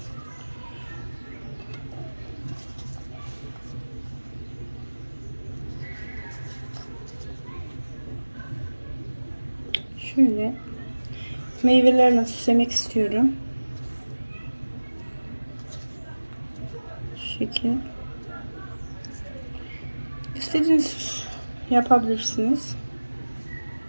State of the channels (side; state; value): both; inverted; correlation -1.00